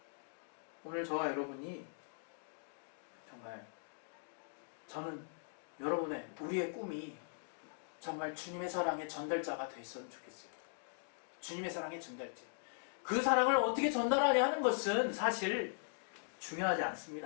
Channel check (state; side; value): silent; right; digital silence